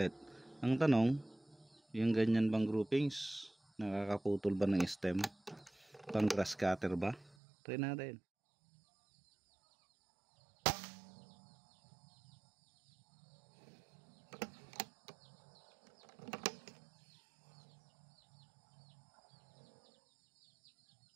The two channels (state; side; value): drops out; left; at 7.4 s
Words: Ang tanong, yung ganyan bang groupings, nakakaputol ba ng stem? Pang grass cutter ba? Try natin.